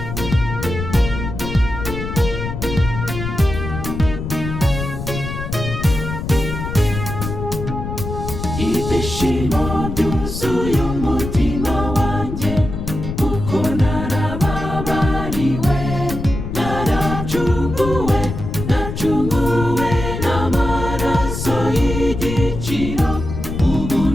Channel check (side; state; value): left; noise; rumble, 6 dB below the sound